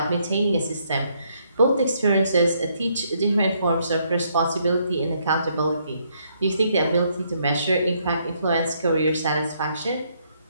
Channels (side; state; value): both; inverted; correlation -0.72